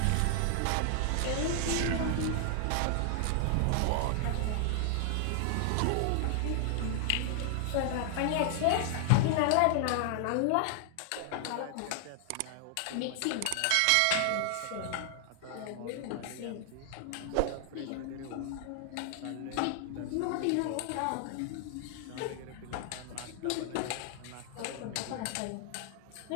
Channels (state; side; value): different; both; correlation 0.00